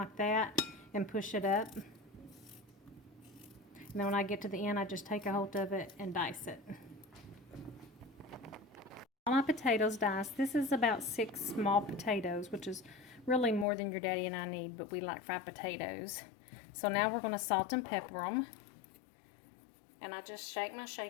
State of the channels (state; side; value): drops out; right; at 13.7 s